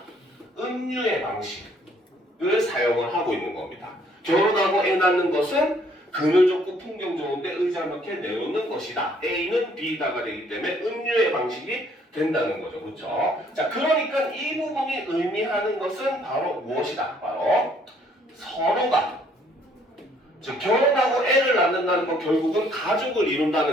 은유의 방식을 사용을 하고 있는 겁니다. 결혼하고 애 낳는 것은 그늘 좋고 풍경 좋은데 의자 몇 개 내놓는 것이다. A는 B다가 되기 때문에 은유의 방식이 된다는 거죠. 그렇죠? 자, 그러니까 이 부분이 의미하는 것은 바로 무엇이다? 바로 서로가, 즉 결혼하고 애를 낳는다는 건 결국은 가족을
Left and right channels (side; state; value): both; normal; correlation 0.64